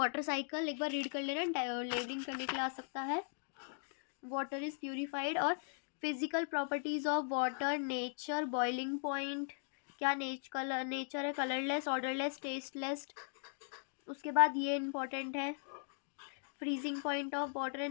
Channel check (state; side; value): silent; right; digital silence